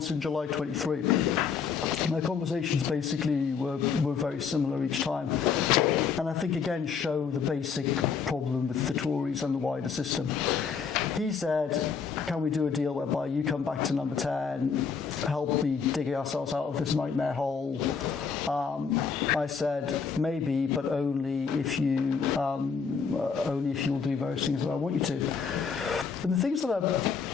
in July 23. My conversations basically were very similar each time. And I think, again, show the basic problem with the Tories and the wider system. He said, can we do a deal whereby you come back to number 10, help me dig ourselves out of this nightmare hole? I said maybe, but only if you'll do various things that I want you to. And the things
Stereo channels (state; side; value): quieter; right; 6.0 dB